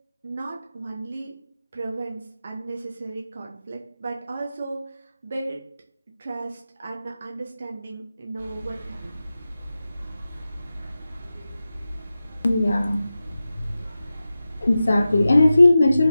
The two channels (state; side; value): inverted; both; correlation -0.94